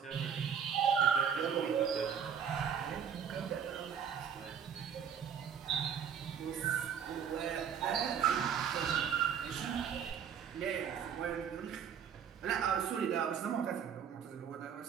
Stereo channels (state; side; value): quieter; left; 7.8 dB